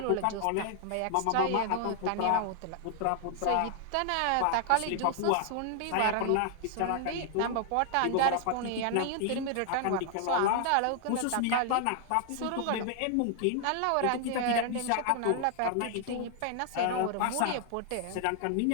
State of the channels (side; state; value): both; different; correlation 0.00